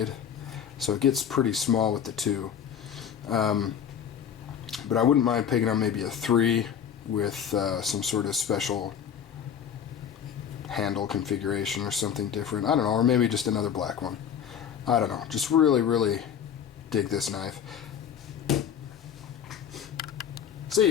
so it gets pretty small with the 2. But I wouldn't mind picking up maybe a 3 with some sort of special handle configuration or something different. I don't know, or maybe just another black one. I don't know. Just really dig this knife. See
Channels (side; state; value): right; quieter; 8.4 dB